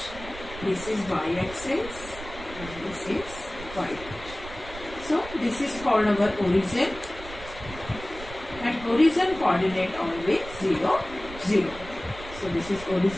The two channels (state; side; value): noise; right; rumble, 14 dB below the sound